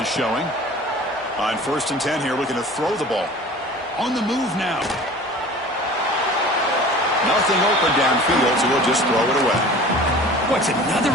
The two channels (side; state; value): both; normal; correlation 0.42